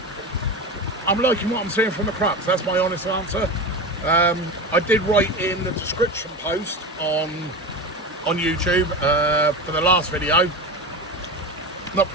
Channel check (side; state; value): both; normal; correlation 0.25